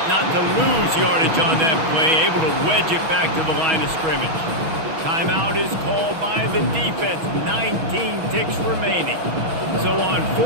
not to lose yardage on that play, able to wedge it back to the line of scrimmage. Timeout is called by the defense. 19 ticks remaining. So on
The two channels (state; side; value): late; left; 6.2 ms